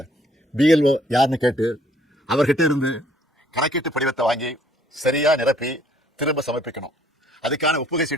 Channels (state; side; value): normal; both; correlation 0.62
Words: பிஎல்ஓ யாருன்னு கேட்டு அவர்கிட்ட இருந்து கணக்கீட்டு படிவத்தை வாங்கி சரியா நிரப்பி திரும்ப சமர்ப்பிக்கணும். அதுக்கான ஒப்புகை